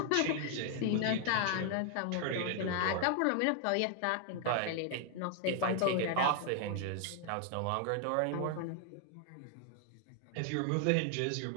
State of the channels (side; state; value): both; different; correlation 0.00